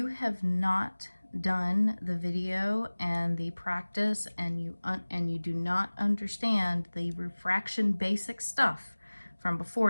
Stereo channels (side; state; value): both; inverted; correlation -1.00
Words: have not done the video and the practice and you do not understand the refraction basic stuff from